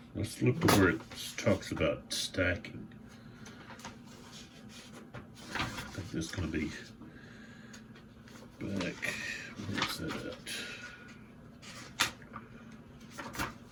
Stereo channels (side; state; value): both; identical; correlation 1.00